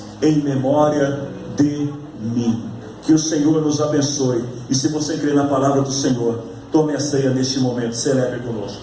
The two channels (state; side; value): identical; both; correlation 1.00